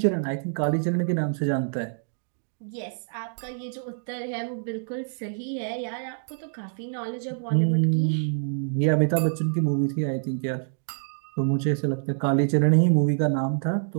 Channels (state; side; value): silent; left; digital silence